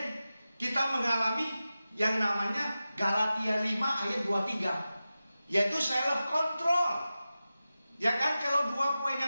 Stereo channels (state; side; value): inverted; both; correlation -0.94